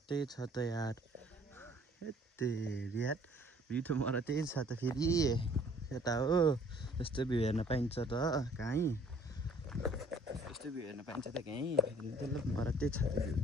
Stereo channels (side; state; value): both; normal; correlation 0.57